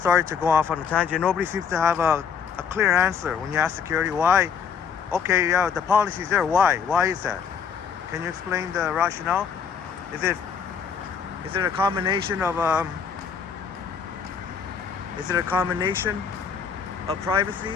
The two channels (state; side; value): quieter; right; 6.8 dB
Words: to go off on a tangent. Nobody seems to have a clear answer when you ask security why. Okay, yeah, the policy's there. Why? Why is that? Can you explain the rationale? Is it a combination of